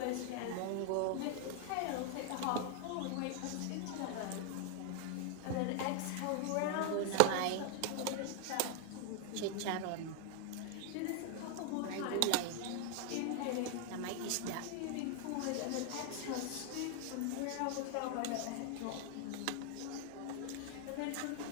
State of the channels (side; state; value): both; different; correlation 0.00